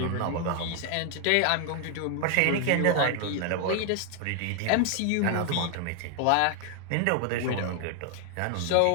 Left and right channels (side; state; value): both; different; correlation 0.00